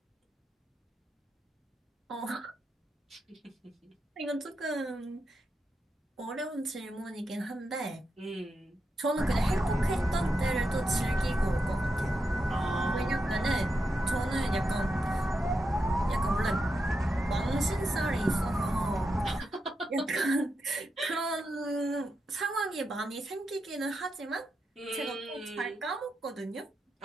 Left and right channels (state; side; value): normal; both; correlation 0.86